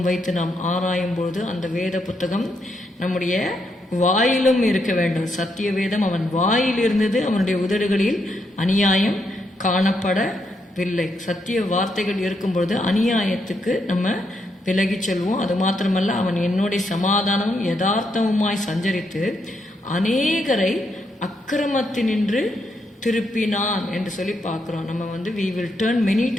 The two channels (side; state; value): both; normal; correlation 0.79